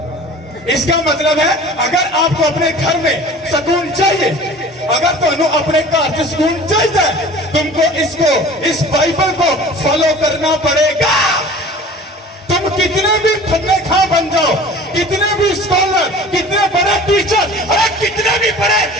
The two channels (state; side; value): normal; both; correlation 0.43